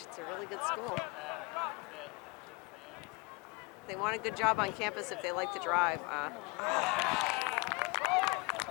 a really good school. They want a good job on campus if they like to drive.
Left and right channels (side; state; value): right; quieter; 28.2 dB